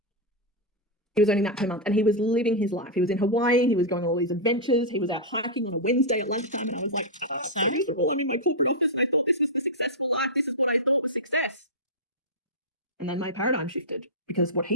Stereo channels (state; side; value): normal; both; correlation -0.05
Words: He was earning that per month and he was living his life. He was in Hawaii. He was going on all these adventures. He was out hiking on a Wednesday at lunchtime. And I was like, oh, so miserable. I'm in my corporate office. I thought this was the successful life. This is what I thought was success. And then my paradigm shifted. because what